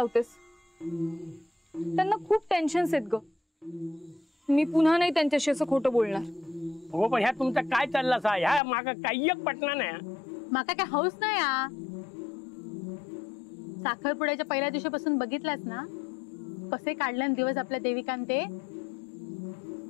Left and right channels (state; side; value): drops out; right; at 8.6 s